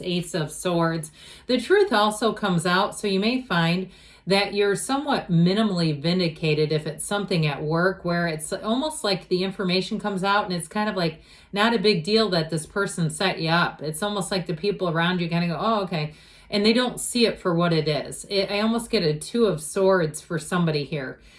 Ace of Swords. The truth also comes out, so you may find that you're somewhat minimally vindicated if it's something at work where it's almost like the information comes out and it's kind of like not a big deal that this person set you up. It's almost like the people around you kind of go, oh, okay. And they don't see it for what it is. I almost get a Two of Swords for somebody here.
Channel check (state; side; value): identical; both; correlation 1.00